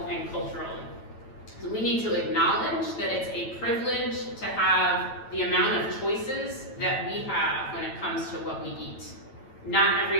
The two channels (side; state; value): right; late; 9.0 ms